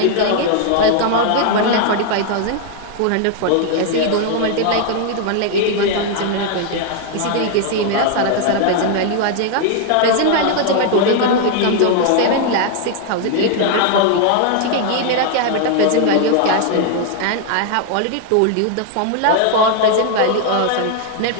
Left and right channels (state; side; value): different; both; correlation 0.00